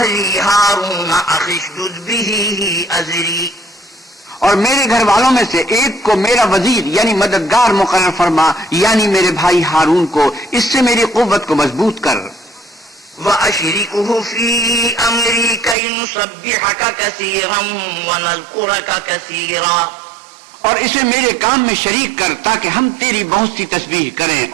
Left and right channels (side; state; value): left; drops out; at 15.8 s